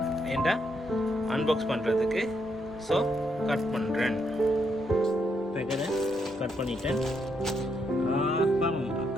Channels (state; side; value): normal; both; correlation 0.77